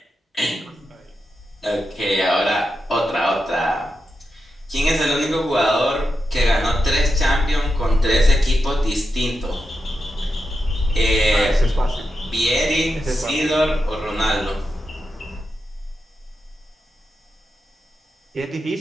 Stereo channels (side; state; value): both; normal; correlation 0.88